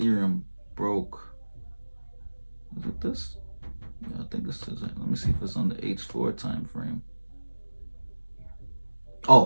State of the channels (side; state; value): both; inverted; correlation -1.00